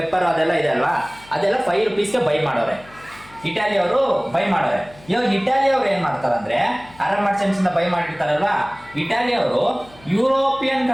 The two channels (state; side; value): noise; left; hum, 24 dB below the sound